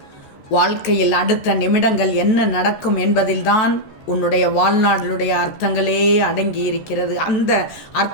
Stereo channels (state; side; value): late; right; 14 ms